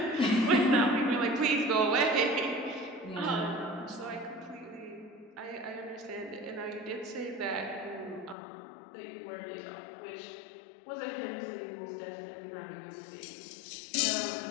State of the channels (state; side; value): drops out; right; at 8.3 s